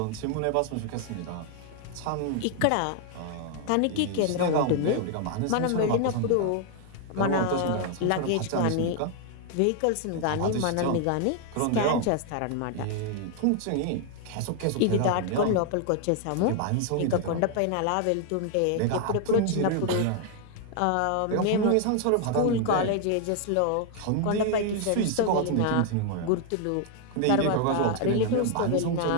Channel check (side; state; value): both; different; correlation 0.00